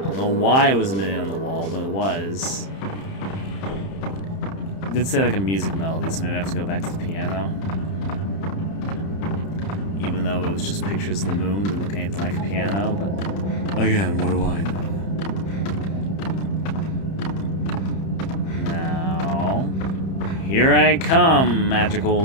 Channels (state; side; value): late; right; 31 ms